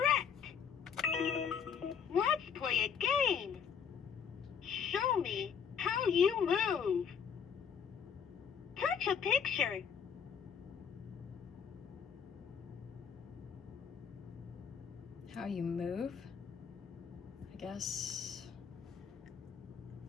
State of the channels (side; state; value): right; quieter; 7.1 dB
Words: Let's play a game. Show me how you move. Touch a picture. How you move? I guess